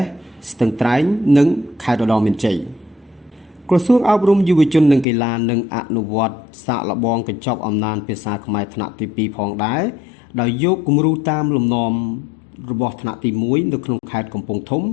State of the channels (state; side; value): drops out; right; at 5.1 s